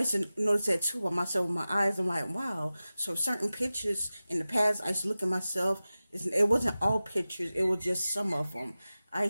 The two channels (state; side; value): inverted; both; correlation -0.96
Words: to notice that too by myself with my eyes. I'm like, wow. So certain pictures in the past, I used to look at myself. It wasn't all pictures. It was just some of them. I